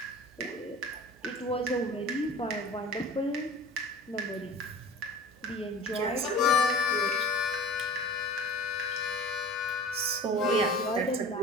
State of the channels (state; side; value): noise; right; hum, 27 dB below the sound